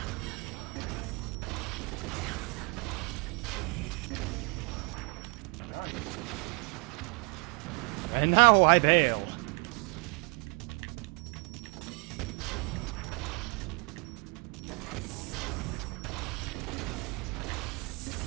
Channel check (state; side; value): quieter; left; 31.7 dB